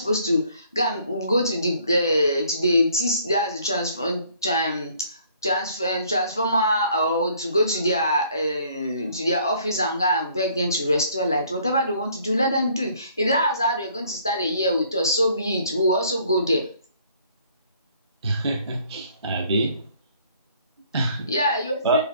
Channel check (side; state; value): both; inverted; correlation -0.61